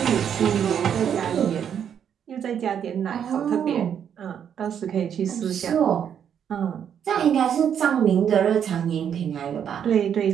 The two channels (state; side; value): quieter; left; 8.5 dB